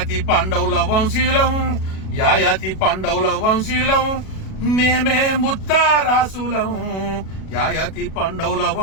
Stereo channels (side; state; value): right; late; 37 ms